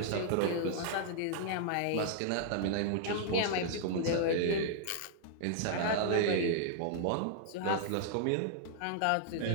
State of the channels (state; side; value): different; both; correlation -0.01